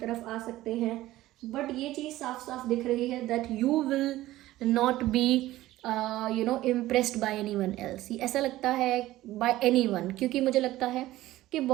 आ सकते हैं, बट ये चीज़ साफ साफ दिख रही है that you will not be impressed by any one else. ऐसा लगता है बाय एनी वन, क्योंकि मुझे लगता है कि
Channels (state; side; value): quieter; left; 16.0 dB